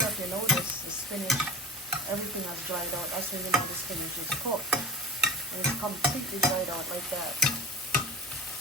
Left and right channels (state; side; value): normal; both; correlation 0.35